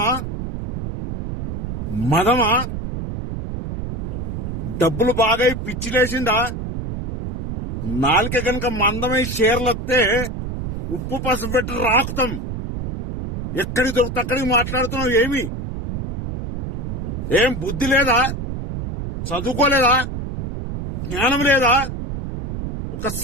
మదమా, డబ్బులు బాగా పిచ్చిలేసిందా? నాలుక గనక మందమై షేర్లొస్తే ఉప్పు పసుపు పెట్టి రాకుతాం. ఎక్కడికి దొరికితే అక్కడికి మాట్లాడుతున్నావు. ఏం బుద్ధి లేదా? చదువుకోలేదా? జ్ఞానం లేదా? ఒక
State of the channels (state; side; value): noise; right; rumble, 5 dB below the sound